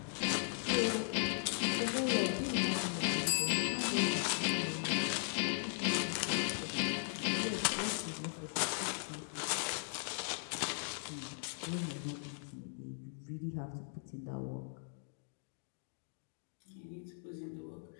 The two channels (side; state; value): right; silent; digital silence